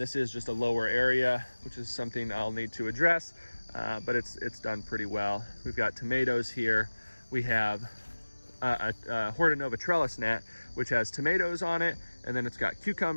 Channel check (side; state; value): both; inverted; correlation -1.00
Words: is just a lower area, which is something I'll need to address, but it's done pretty well. We've got tomatoes here. We have a Hortonova trellis net, which has tomatoes on it, and then it's got